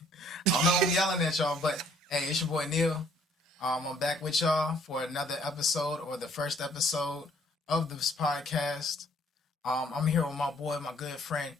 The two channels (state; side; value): normal; both; correlation 0.62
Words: I don't know I'm yelling at y'all, but hey, it's your boy Neil. I'm back with y'all for another episode, or the first episode of this podcast. I'm here with my boy, my good friend.